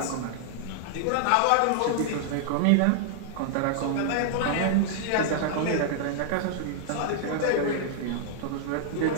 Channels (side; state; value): both; different; correlation -0.01